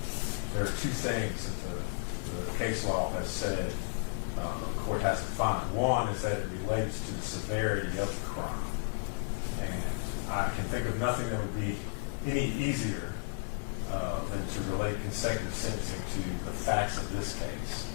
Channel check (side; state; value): right; quieter; 34.2 dB